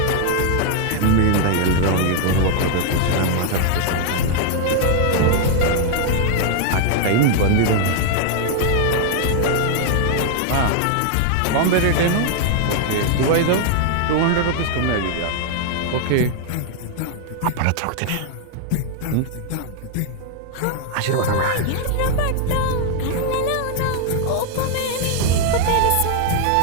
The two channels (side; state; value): both; different; correlation 0.00